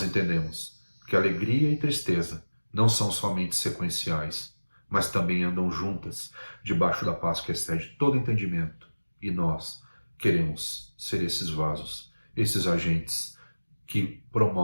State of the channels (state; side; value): inverted; both; correlation -1.00